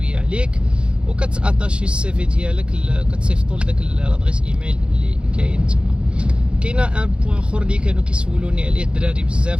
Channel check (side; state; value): left; late; 0.056 ms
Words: عليك وكتاتاشي السي في ديالك، كتصيفطوا لذاك لادريس ايميل اللي كاين تما. كاينه ان بوين اخر اللي كانوا كيسولوني عليه الدراري